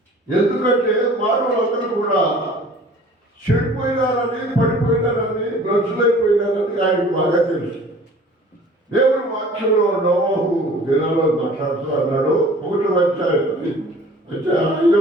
ఎందుకంటే మానవులందరూ కూడా చెడిపోయినారని, పడిపోయినారని, భ్రష్టులైపోయినారని ఆయనకు బాగా తెలుసు. దేవుడు వాక్యంలో నోవహు దినాల్లో మాట్లాడుతూ అన్నాడు. 1వ అధ్యాయం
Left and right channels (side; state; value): both; normal; correlation 0.48